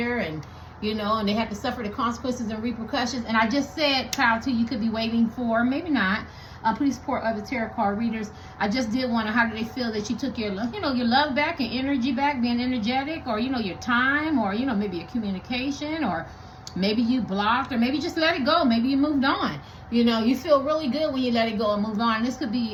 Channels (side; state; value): both; identical; correlation 1.00